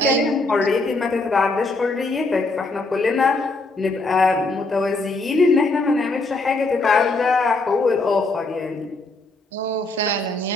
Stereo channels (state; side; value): quieter; right; 3.1 dB